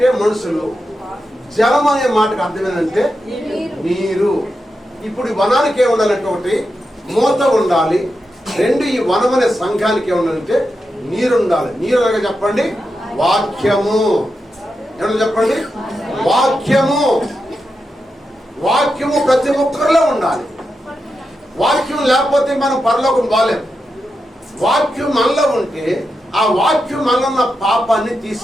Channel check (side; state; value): both; normal; correlation 0.88